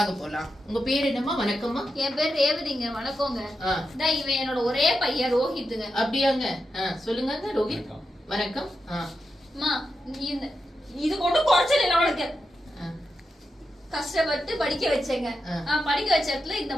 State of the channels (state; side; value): normal; both; correlation 0.88